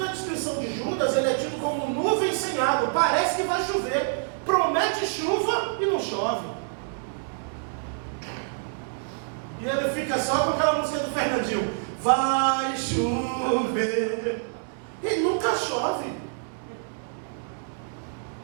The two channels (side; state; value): left; silent; digital silence